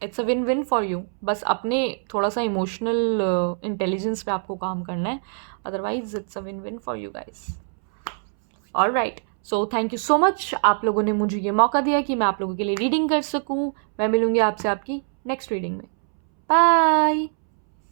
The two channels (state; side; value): silent; left; 63 dB below the other